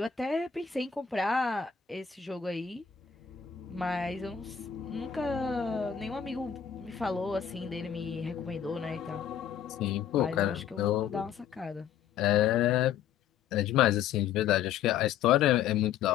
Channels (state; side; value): quieter; right; 8.5 dB